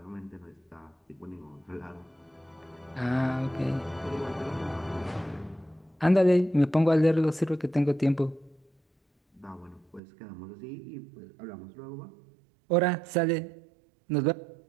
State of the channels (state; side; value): drops out; left; at 10.0 s